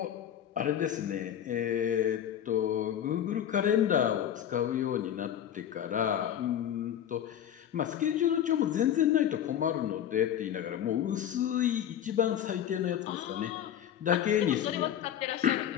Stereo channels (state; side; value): quieter; right; 10.2 dB